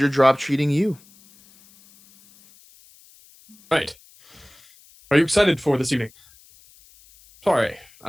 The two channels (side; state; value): left; noise; hiss, 28 dB below the sound